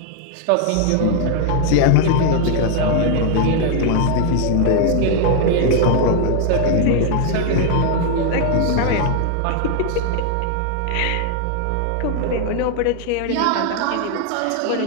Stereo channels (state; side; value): different; both; correlation 0.00